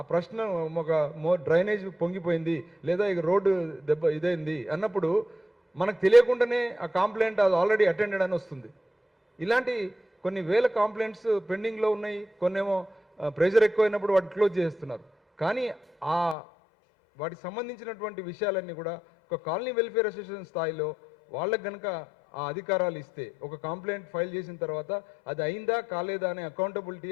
ప్రశ్న ఒక డ్రైనేజ్ పొంగిపోయింది లేదా ఇక రోడ్డు ఇదైంది అన్నప్పుడు మనకు తెలియకుండానే ఆ కంప్లైంట్ అది ఆల్రెడీ అటెండెడ్ అని వస్తుంది. ఇలాంటి కొన్ని వేల కంప్లైంట్స్ పెండింగ్లో ఉన్నాయి. కొన్నేమో ప్రెషర్ ఎక్కువైనప్పుడు వాటిని క్లోజ్ చేస్తున్నారు. కానీ వాటికి సంబంధించినటువంటి విషయాలన్నీ కూడా ఒక కాలనీ వెల్ఫేర్ అసోసియేషన్ స్థాయిలో వాళ్ళకి కనుక ఆ అధికారాలు ఇస్తే ఒక కంప్లైంట్ ఫైల్ చేసిన తర్వాత అది అయిందా కాలేదా అనే అకౌంటబిలిటీ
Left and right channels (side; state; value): right; drops out; at 16.4 s